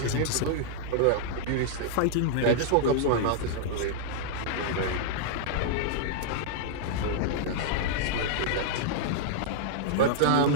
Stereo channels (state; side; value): different; both; correlation -0.01